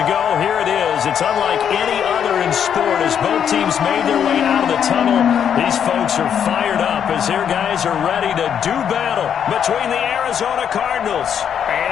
here it is. It's unlike any other in sport as both teams made their way out of the tunnel. These folks are fired up as their guys are ready to do battle between the Arizona Cardinals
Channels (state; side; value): quieter; right; 8.4 dB